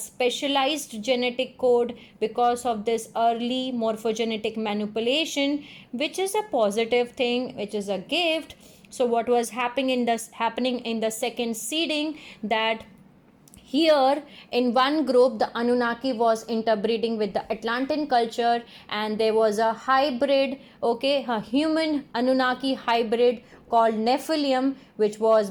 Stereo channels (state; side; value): identical; both; correlation 1.00